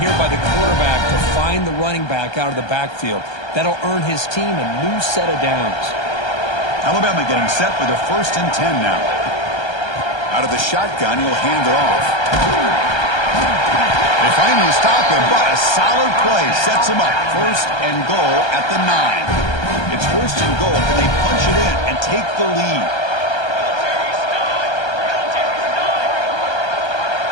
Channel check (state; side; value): late; right; 1.3 ms